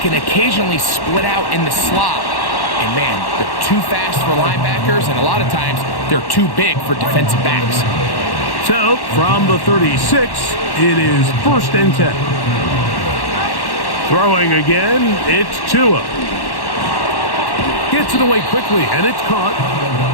occasionally split out in the slot. And man, they're too fast for linebackers, and a lot of times they're too big for defensive backs. So, from the 36, it is first and 10. Throwing again, it's Tua. Gets it away quickly, and it's caught.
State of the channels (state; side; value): late; right; 1.1 ms